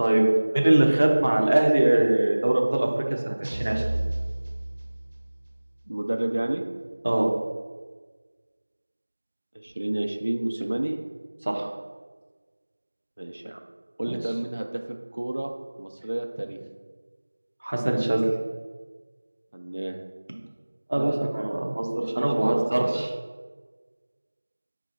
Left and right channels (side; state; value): both; inverted; correlation -1.00